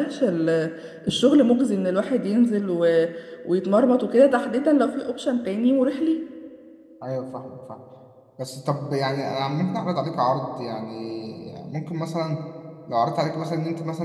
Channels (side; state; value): both; identical; correlation 1.00